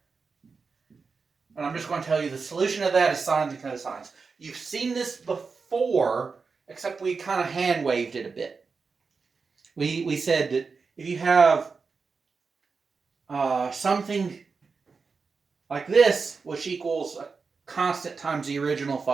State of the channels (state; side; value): quieter; left; 4.8 dB